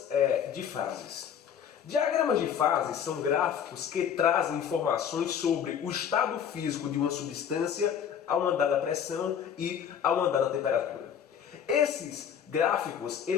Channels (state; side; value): quieter; right; 8.4 dB